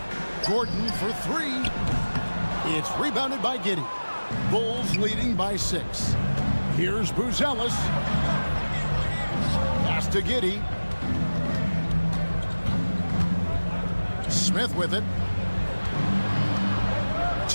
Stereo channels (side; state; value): both; inverted; correlation -1.00